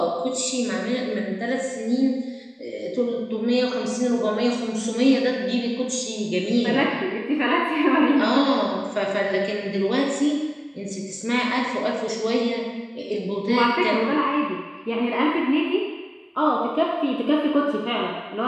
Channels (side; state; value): both; identical; correlation 1.00